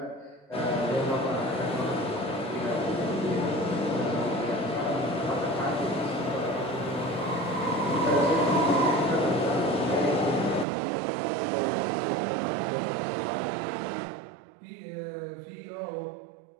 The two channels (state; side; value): drops out; left; at 10.7 s